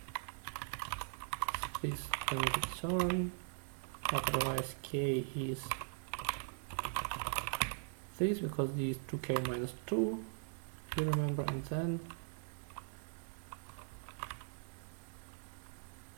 is sorry, otherwise k is this, because d is 2k minus 2, you remember, and then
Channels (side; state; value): left; silent; 51 dB below the other